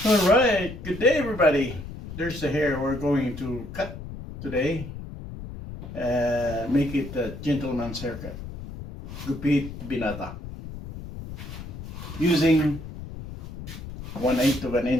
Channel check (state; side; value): noise; left; rumble, 11 dB below the sound